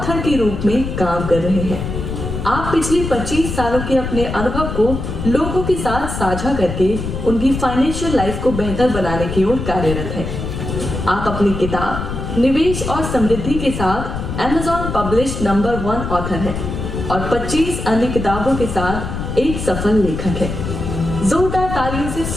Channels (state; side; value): noise; left; rumble, 5 dB below the sound